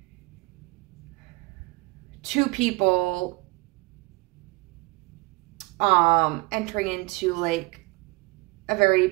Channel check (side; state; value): left; quieter; 24.3 dB